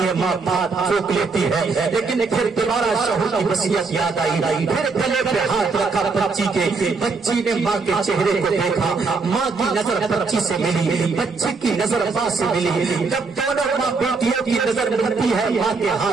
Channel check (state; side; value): quieter; left; 4.4 dB